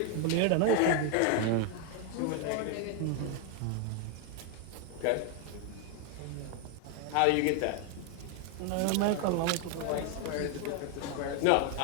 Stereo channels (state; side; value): different; both; correlation 0.01